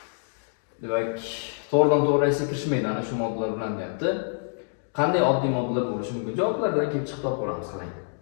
Demak, to'g'ridan-to'g'ri reaksiyaga kirishmaydi ana shu moddalar bilan deyapti. qanday oddiy moddalar bo'lishi mumkin? Javoblardan kelib chiqib topib olamiz qarang.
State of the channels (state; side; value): silent; right; digital silence